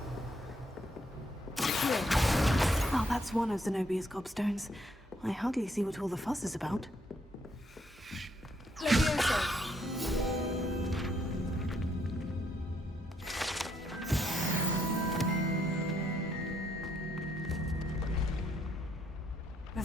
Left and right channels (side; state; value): both; normal; correlation 0.73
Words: Oh, that's one of Zenobia's gobstones. I hardly see what all the fuss is about.